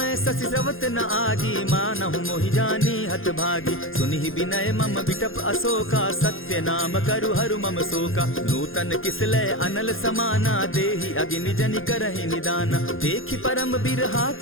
शशि स्रवत न आगी, मानहु मोहि जानी हत भागी। सुनिहि विनय मम विटप अशोका, सत्य नाम करु हरु मम शोका। नूतन किसलय अनल समाना, देहि अगिनि जनि करहि निदाना। देखि परम बिरहा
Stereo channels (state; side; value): late; right; 0.60 ms